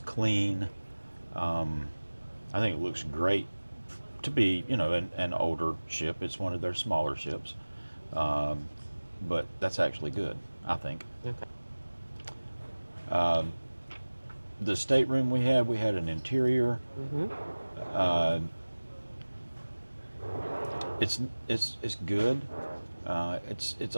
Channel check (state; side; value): inverted; both; correlation -1.00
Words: clean. Um, I think it looks great to be, an older ship. It's one of their smaller ships. Um, but that's actually good, I think. Okay. Um, the stateroom we had an interior. Hmm. Uh, it's it's good. It's